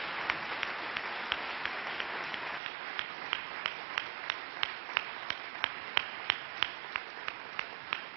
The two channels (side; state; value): left; drops out; at 2.6 s